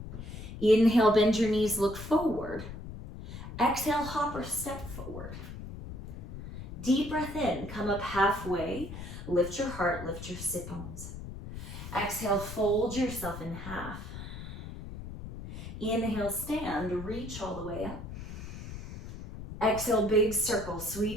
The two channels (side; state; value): left; noise; rumble, 10 dB below the sound